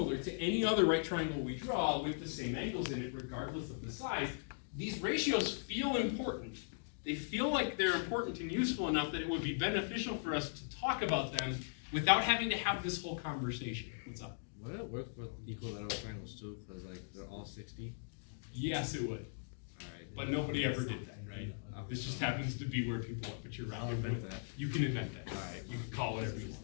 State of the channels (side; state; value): right; silent; digital silence